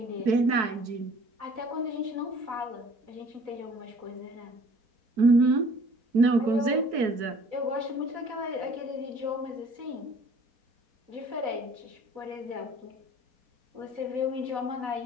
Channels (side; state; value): left; late; 4.6 ms